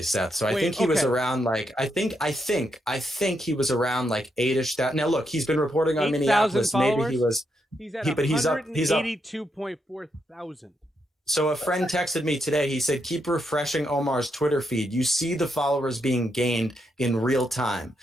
Seth. So I think he was around like, I think he was around like 8-ish. Now look, he's been reporting on Minneapolis. Maybe he was, he's at 182.4 thousand. So a friend texted me today. He said, keep refreshing Omar's Twitter feed. You see the followers being gained in real time.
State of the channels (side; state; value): both; normal; correlation 0.81